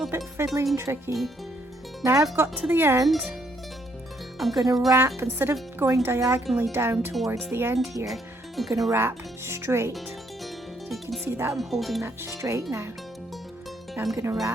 bit fiddly and tricky. Now I've got to the end, I'm going to wrap, instead of going diagonally down towards the end here, I'm going to wrap straight. So you can see that I'm holding that straight now. Now I'm going to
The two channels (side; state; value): both; normal; correlation 0.71